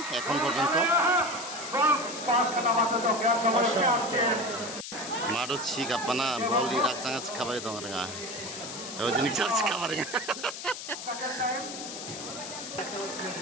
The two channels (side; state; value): left; noise; hiss, 9 dB below the sound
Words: এখন পর্যন্ত। মাঠও ছিক আপানা বল রাখচাঙা খাবারে দং রেঙা ওই জিনিস খাবারে